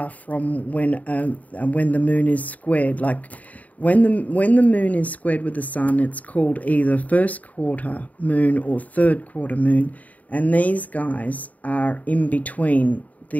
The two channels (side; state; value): right; late; 0.073 ms